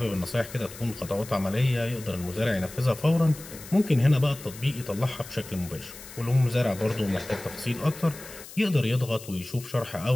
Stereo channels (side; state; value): left; noise; hiss, 16 dB below the sound